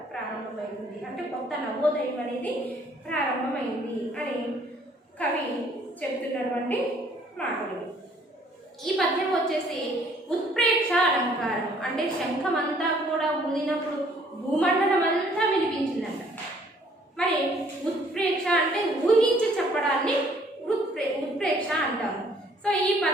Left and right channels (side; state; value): both; normal; correlation 0.61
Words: ప్రారంభమైంది. అంటే కొత్త నవోదయం అనేది ప్రారంభమైంది అని కవి చెప్తున్నటువంటి మాటలు. ఈ పద్యం వచ్చేసి ఉత్ప్రేక్ష అలంకారం. అంటే శంఖం అంతా కూడా ఊదినప్పుడు భూమండలం అంతా వినిపించిందంట. మరి ఉత్ప్రేక్ష అంటే ఊహించి చెప్పడాన్ని ఉత్ప్రేక్ష అంటాము. సో ఈ